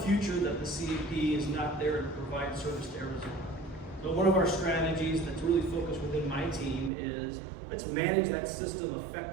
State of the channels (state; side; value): drops out; left; at 6.9 s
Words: future that the CAP is not there to provide service to Arizona. So one of our strategies that's really focused within my team is let's manage that system